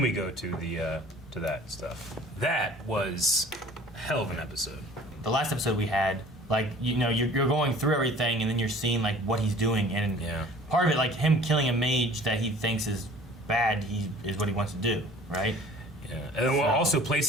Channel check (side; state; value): both; normal; correlation 0.48